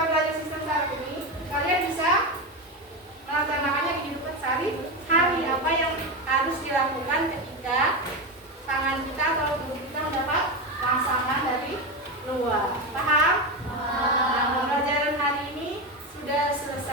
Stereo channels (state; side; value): normal; both; correlation 0.16